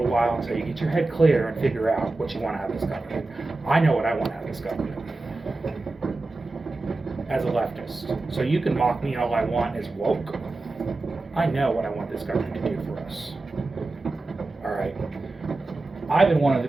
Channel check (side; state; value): left; quieter; 3.2 dB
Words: while until you get your head clear and figure out what you want out of this government. I know what I want out of this government as a leftist. So you can mock me all I want as woke. I know what I want this government to do for us. All right. I've been one of the